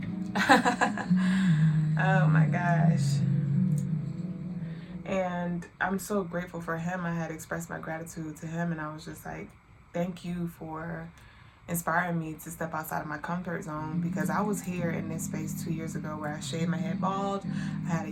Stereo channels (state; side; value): identical; both; correlation 1.00